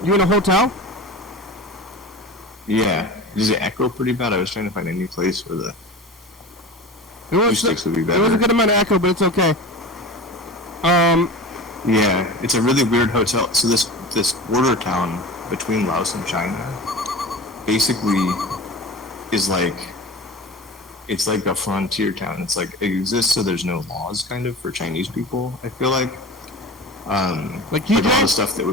in a hotel? Yeah. Does it echo pretty bad? I was trying to find any place where the It was acoustics would be it was a better. good amount of echo, but it's okay. Yeah, it's a really weird hotel. So this border town between Laos and China basically is like, it's like a frontier town. It's like, it exists so there's no laws kind of for Chinese people, I feel like. Like all the stuff that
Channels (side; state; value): both; normal; correlation 0.33